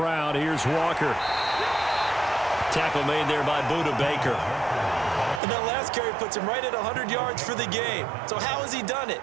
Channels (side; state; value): left; drops out; at 5.4 s